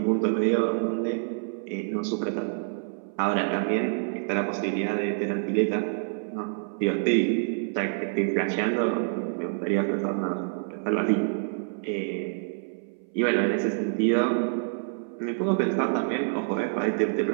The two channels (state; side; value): silent; left; 60 dB below the other